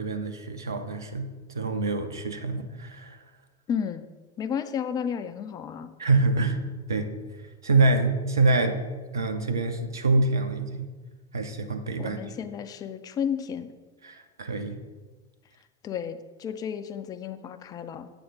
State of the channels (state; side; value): inverted; both; correlation -0.47